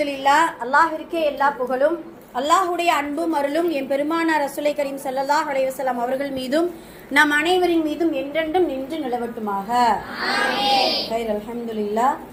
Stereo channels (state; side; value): identical; both; correlation 1.00